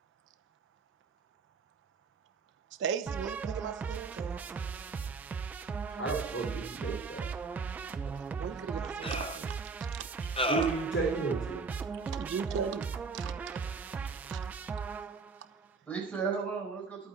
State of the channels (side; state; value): left; quieter; 4.5 dB